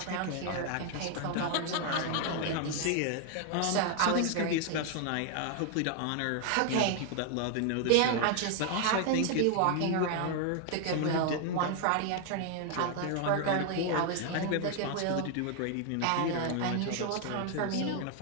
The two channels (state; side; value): different; both; correlation 0.00